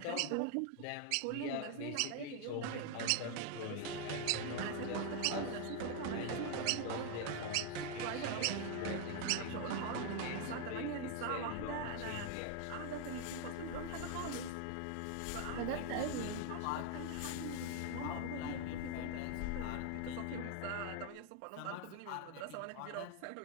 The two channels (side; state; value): both; different; correlation 0.00